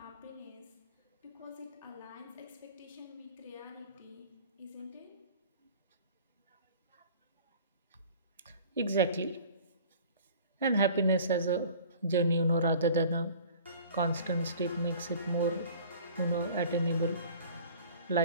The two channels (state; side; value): inverted; both; correlation -0.46